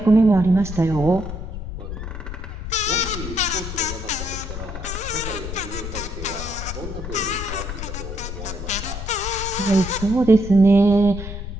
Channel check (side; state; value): left; noise; rumble, 7 dB below the sound